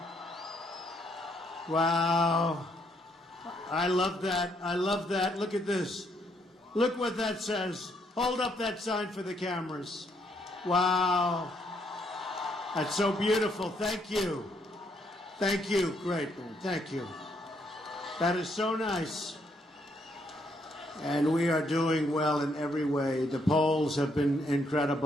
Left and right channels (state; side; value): normal; both; correlation 0.72